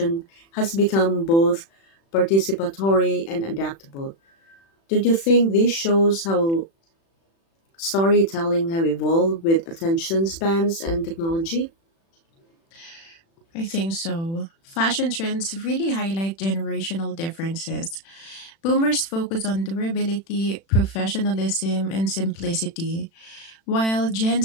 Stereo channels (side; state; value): right; late; 36 ms